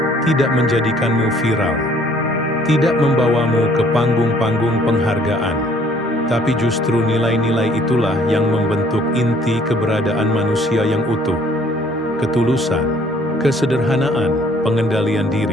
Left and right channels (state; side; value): normal; both; correlation 0.59